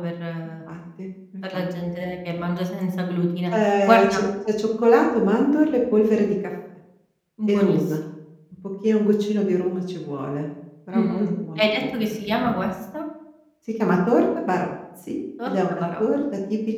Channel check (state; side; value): identical; both; correlation 1.00